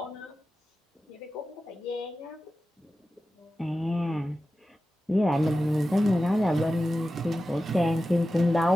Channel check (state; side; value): normal; both; correlation 0.94